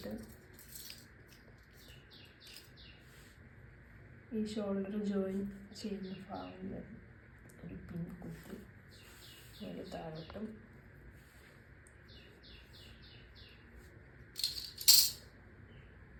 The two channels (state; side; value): identical; both; correlation 1.00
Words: ഈ ഷോൾഡർ ജോയിൻ ചെയ്യുന്ന ഭാഗം ഒരു പിൻ കുത്തി ഒരു താഴോട്ടും